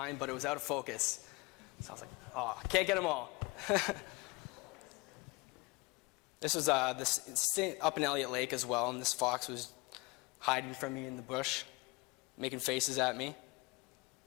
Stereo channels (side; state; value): right; quieter; 25.2 dB